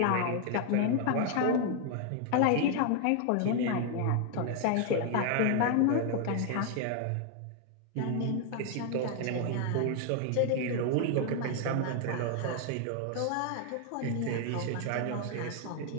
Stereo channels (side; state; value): both; different; correlation 0.00